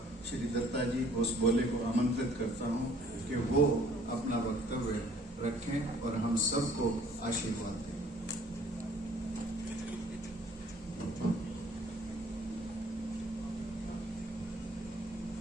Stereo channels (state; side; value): normal; both; correlation 0.57